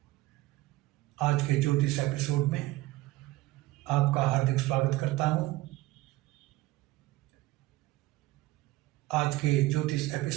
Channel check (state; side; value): quieter; left; 18.4 dB